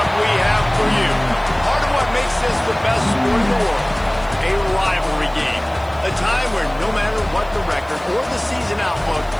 we have for you. Part of what makes this the best sport in the world, a rivalry game. A time where no matter what the record or the season outlook,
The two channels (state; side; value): noise; right; hiss, 27 dB below the sound